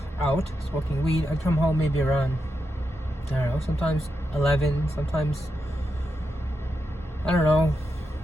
out smoking weed. I'd come home maybe around, I don't know, sometimes 11, sometimes, I don't know,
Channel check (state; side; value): normal; both; correlation 0.86